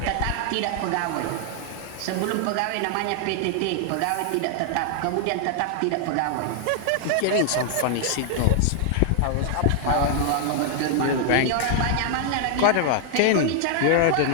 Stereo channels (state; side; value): different; both; correlation 0.00